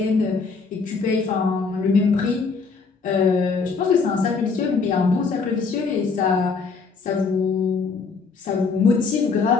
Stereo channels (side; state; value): right; quieter; 4.8 dB